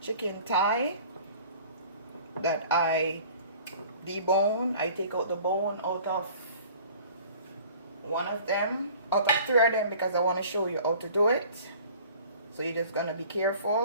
thigh that I debone. I take out the bone out of one of them, out of 3 of them, because I want to show you how to do it. So you're just gonna be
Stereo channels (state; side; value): inverted; both; correlation -0.48